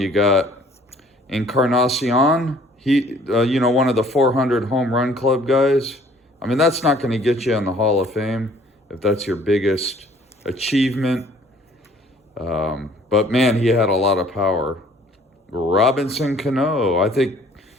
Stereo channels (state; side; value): normal; both; correlation 0.56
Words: got Encarnacion. He, one of the 400 home run club guys. I mean, that's not going to get you in the Hall of Fame if that's your biggest achievement. But man, he had a lot of power. Robinson Cano, I think,